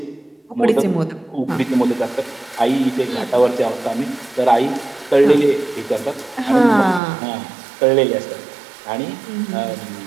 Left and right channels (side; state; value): left; drops out; at 7.0 s